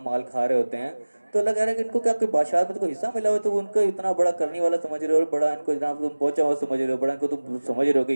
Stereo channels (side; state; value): both; inverted; correlation -1.00